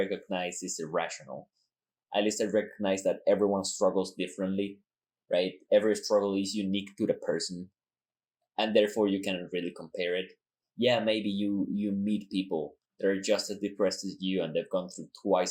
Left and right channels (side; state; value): both; identical; correlation 1.00